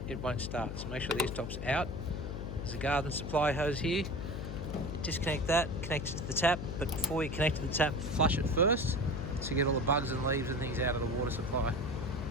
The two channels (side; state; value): left; noise; hum, 6 dB below the sound